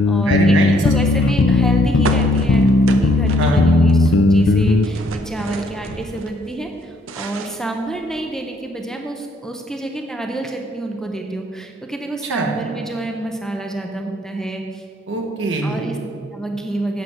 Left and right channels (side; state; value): both; normal; correlation 0.66